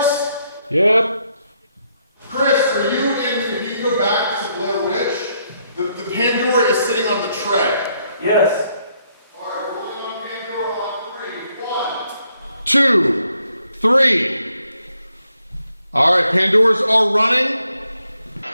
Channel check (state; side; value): inverted; both; correlation -0.75